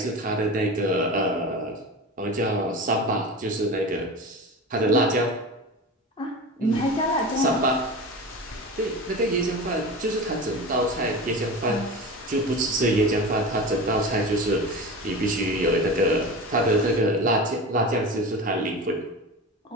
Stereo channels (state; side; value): normal; both; correlation 0.29